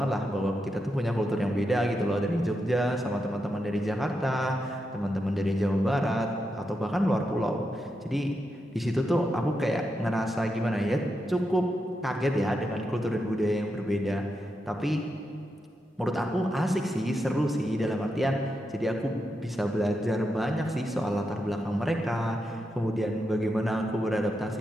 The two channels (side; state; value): both; normal; correlation 0.85